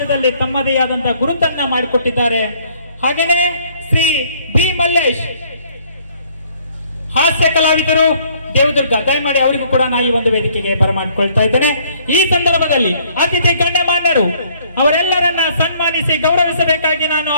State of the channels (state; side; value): inverted; both; correlation -0.62